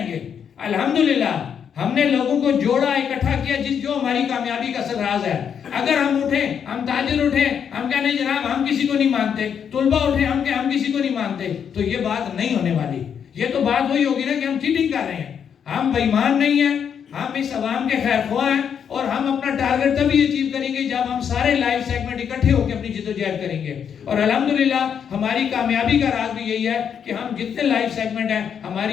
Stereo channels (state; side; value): quieter; right; 7.8 dB